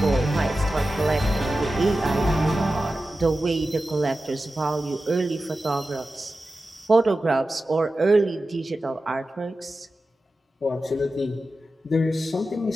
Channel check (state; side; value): normal; both; correlation 0.93